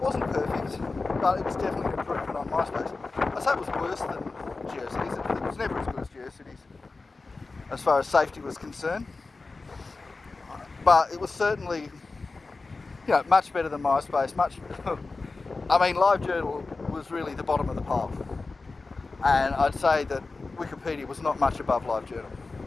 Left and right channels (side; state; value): right; quieter; 3.8 dB